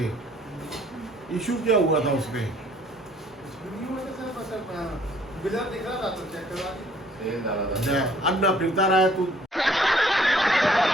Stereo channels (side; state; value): both; normal; correlation 0.60